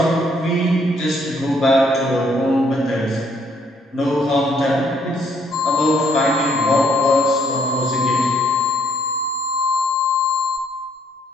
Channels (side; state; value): both; normal; correlation 0.67